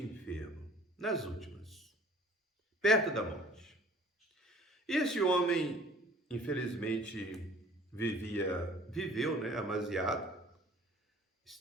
enfermo, nas últimas, perto da morte. Esse homem, infelizmente, viveu, né, amasiado,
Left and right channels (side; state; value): both; normal; correlation 0.50